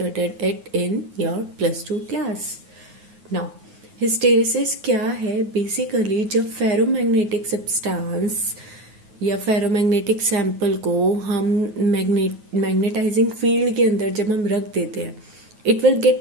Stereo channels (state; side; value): late; left; 9.4 ms